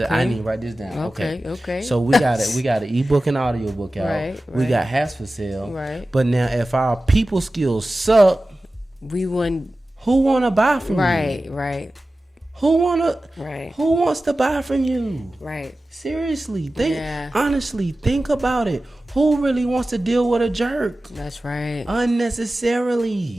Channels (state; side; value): normal; both; correlation 0.95